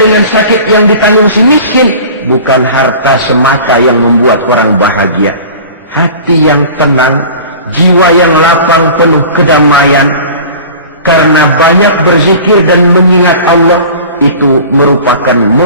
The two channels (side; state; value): both; inverted; correlation -0.40